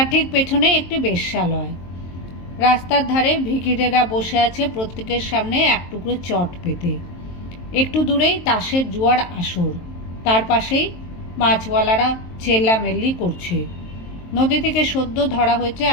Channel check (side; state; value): right; late; 23 ms